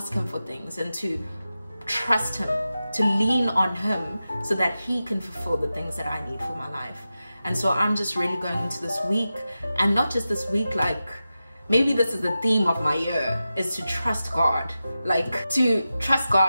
him for things, and to trust him, to lean on him so that he can fulfill the things that I need for my life. And so I'm just really going into this week, and not just this week, like maybe this is the theme of my year, is to trust God, like to trust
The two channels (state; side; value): inverted; both; correlation -0.93